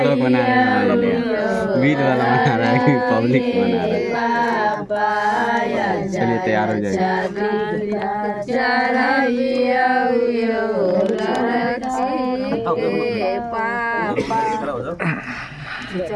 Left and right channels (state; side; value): identical; both; correlation 1.00